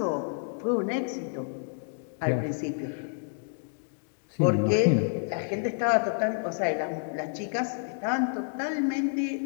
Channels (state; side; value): silent; right; digital silence